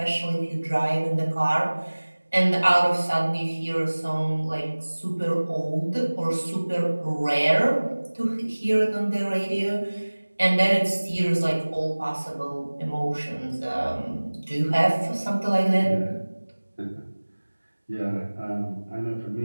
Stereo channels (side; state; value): both; inverted; correlation -1.00